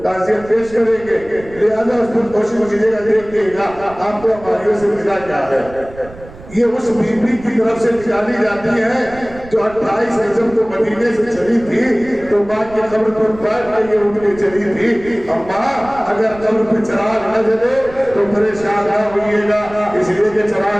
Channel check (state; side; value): noise; right; rumble, 18 dB below the sound